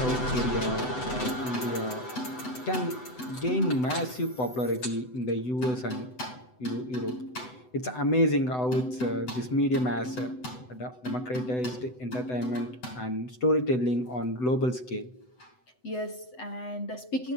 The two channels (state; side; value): late; right; 8.0 ms